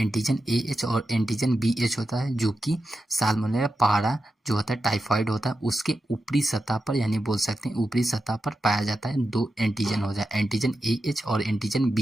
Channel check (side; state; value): both; normal; correlation 0.90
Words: ए एच और एंटीजन बी एच होता है, जो कि साल्मोनेला पारा जो होता है टाइफाइड होता है उसके ऊपरी सतह पर, यानी बोल सकते हैं ऊपरी सतह पर पाया जाता है। दो एंटीजन हो जाए, एंटीजन ए एच और एंटीजन